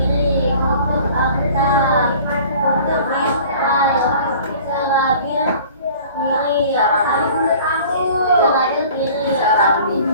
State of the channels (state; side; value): inverted; both; correlation -0.47